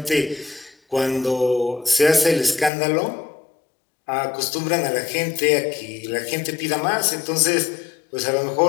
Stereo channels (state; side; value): drops out; right; at 2.7 s